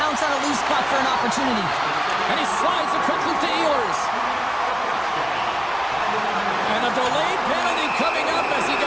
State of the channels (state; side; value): noise; left; hum, 27 dB below the sound